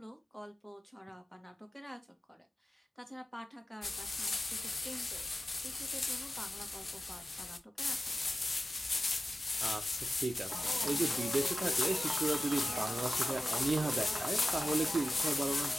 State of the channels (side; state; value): both; normal; correlation 0.94